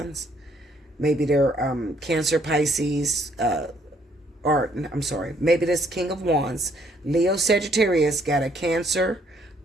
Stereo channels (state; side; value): normal; both; correlation 0.66